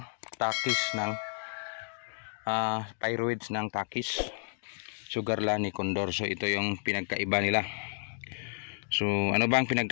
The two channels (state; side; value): silent; right; digital silence